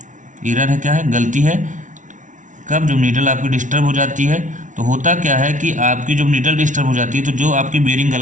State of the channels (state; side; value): late; left; 0.37 ms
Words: एरर है, क्या है, गलती है। कब, जब नीडल आपकी डिस्टर्ब हो जाती है, तो होता क्या है कि आपकी जब नीडल डिस्टर्ब हो जाती है, तो जो आपकी बेयरिंग